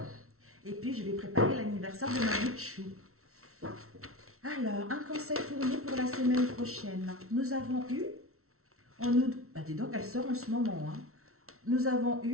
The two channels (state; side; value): late; left; 0.63 ms